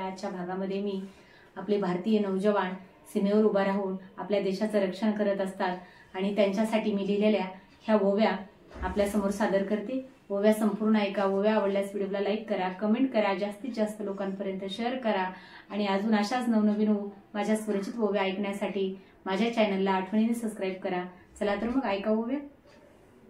भागामध्ये मी आपले भारतीय नौजवान सीमेवर उभा राहून आपल्या देशाचं रक्षण करत असतात आणि त्यांच्यासाठी मी लिहिलेल्या ह्या ओव्या आपल्या समोर सादर करते। ओव्या संपूर्ण ऐका। ओव्या आवडल्यास व्हिडिओला लाईक करा, कमेंट करा, जास्तीत जास्त लोकांपर्यंत शेअर करा आणि अजून अशाच नवनवीन माझ्या स्वरचित ओव्या ऐकण्यासाठी माझ्या चॅनलला आठवणीने सबस्क्राइब करा। चला तर मग ऐका ओव्या।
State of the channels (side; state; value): both; identical; correlation 1.00